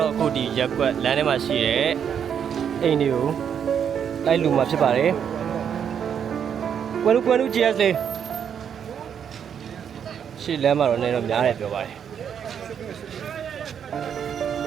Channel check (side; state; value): left; quieter; 8.1 dB